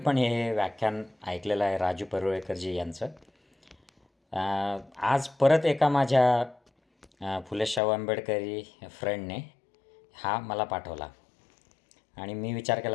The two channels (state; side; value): drops out; right; at 7.8 s